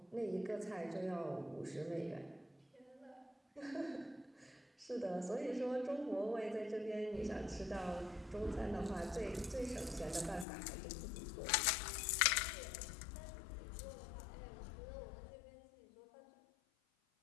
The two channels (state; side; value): drops out; right; at 10.5 s